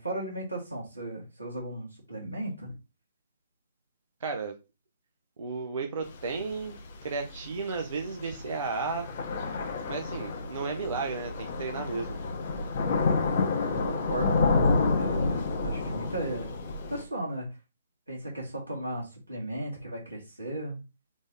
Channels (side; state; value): both; inverted; correlation -0.66